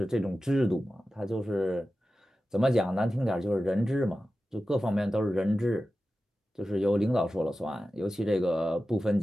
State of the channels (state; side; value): normal; both; correlation 0.94